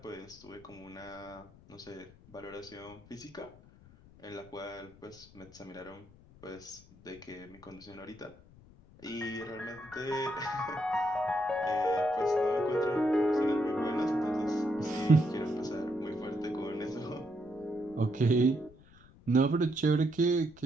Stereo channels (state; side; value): noise; left; rumble, 23 dB below the sound